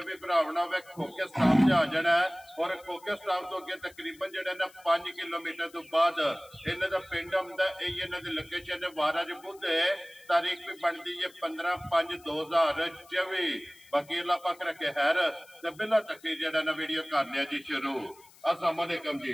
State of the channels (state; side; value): noise; left; hiss, 25 dB below the sound